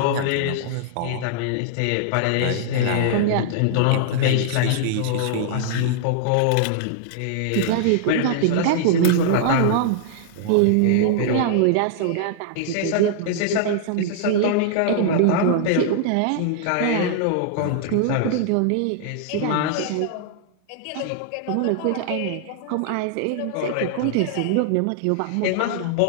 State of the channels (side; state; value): both; different; correlation -0.01